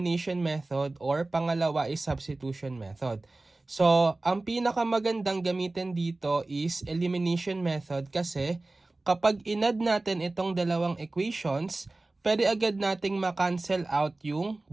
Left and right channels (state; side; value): quieter; left; 3.0 dB